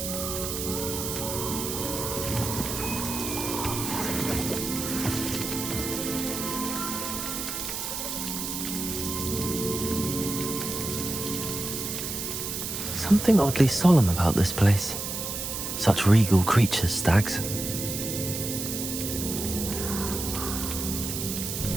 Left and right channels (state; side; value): noise; right; hiss, 4 dB below the sound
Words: Something oddly solemn about this place. Such regal creatures, stags.